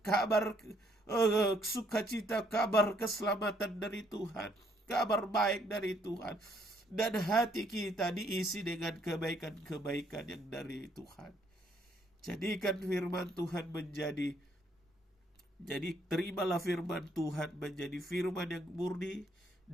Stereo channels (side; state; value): both; normal; correlation 0.68